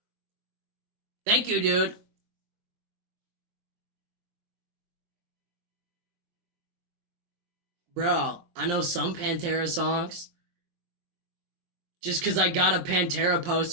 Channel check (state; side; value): late; left; 23 ms